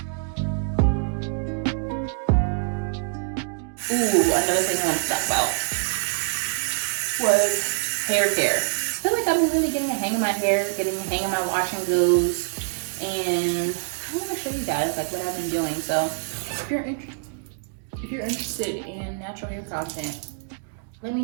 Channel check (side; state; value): left; silent; digital silence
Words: Ooh, another thing I want to talk about was hair care. I feel like I've been really getting a hang of my hair, getting a hang of my wash and goes, and I want to show you guys like what I've been doing. So if you're interested in natural hair content, let me